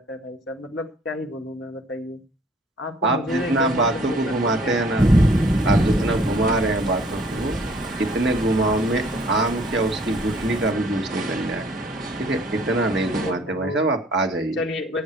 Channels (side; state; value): both; normal; correlation 0.58